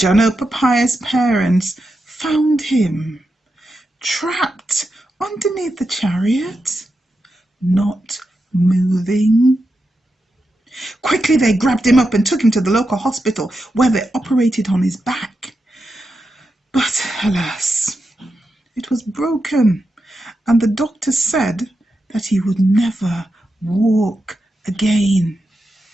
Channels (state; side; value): normal; both; correlation 0.88